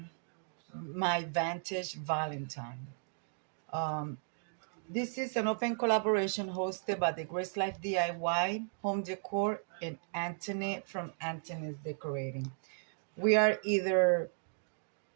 my Vintage Valentine. Um, this is an open collaboration hosted by the Grace Life DIY, Home Decor, and Anthony from Anthony's Decorating. We are either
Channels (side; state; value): left; silent; digital silence